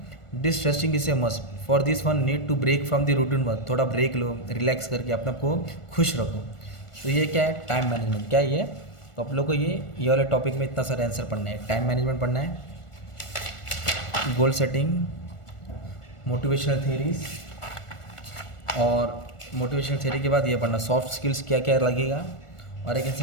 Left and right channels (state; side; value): late; right; 1.4 ms